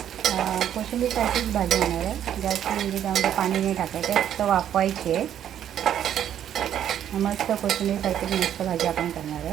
कोशिंबीरसारखीच भाजी होणार आहे। जास्त म्हणजे त्यामध्ये पाणी नाही टाकायचं, फक्त वाफवायची आहे। मस्त कोशिंबीरसारखीच मस्त भाजी आपण करणार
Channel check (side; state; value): left; quieter; 10.2 dB